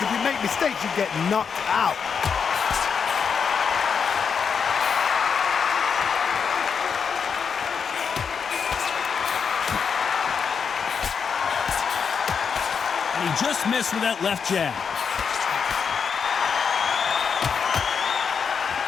If you make mistakes, you get knocked out. He just missed with that left jab.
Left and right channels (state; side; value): quieter; right; 6.4 dB